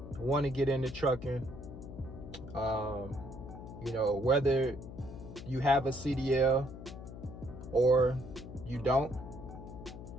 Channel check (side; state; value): left; noise; hum, 12 dB below the sound